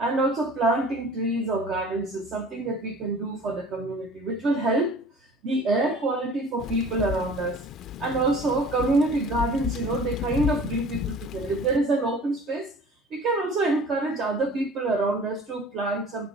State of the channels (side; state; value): both; normal; correlation 0.45